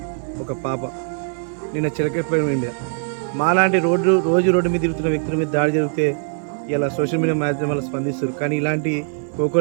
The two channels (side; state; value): left; silent; digital silence